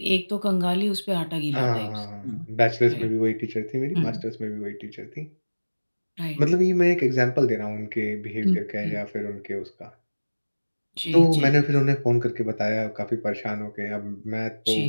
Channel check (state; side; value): inverted; both; correlation -1.00